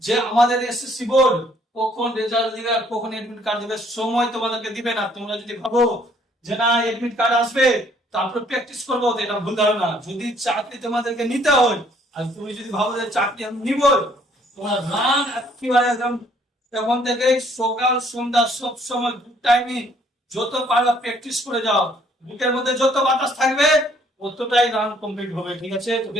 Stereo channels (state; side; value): normal; both; correlation 0.63